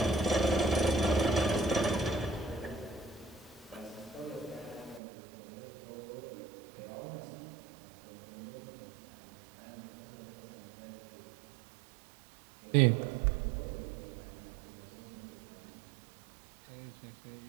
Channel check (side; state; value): left; drops out; at 5.0 s